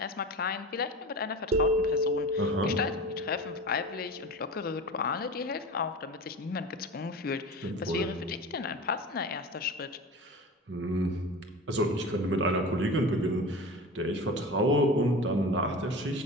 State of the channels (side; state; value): both; normal; correlation 0.33